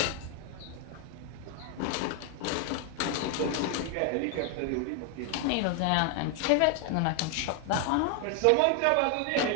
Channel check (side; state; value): both; different; correlation 0.00